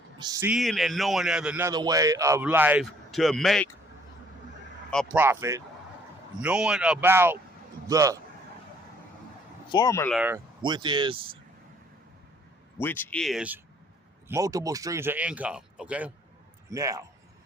seeing and knowing there's another way of life to make a profit, knowing about the formula, which is multiple streams of income. Okay, now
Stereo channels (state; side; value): normal; both; correlation 0.61